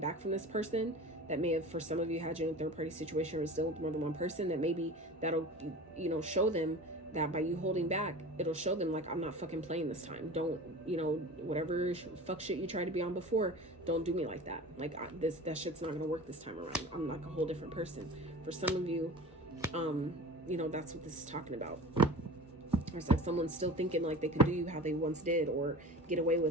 from this person, that may have, for some of you, had you in a third party situation, or still with more than one person, that maybe that'll, you know, show them that by you holding back, it'll show them, like, I'm not fucking playing this time. Don't, you know, whatever fuck shit you tried to be on before, don't do me like that. Like, that shit's not gonna work this time around. I'm like a whole different person. For some of you, you know, that's what this is talking about. Or it's like someone's still thinking like they could do you how they once did, or get away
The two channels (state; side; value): normal; both; correlation 0.36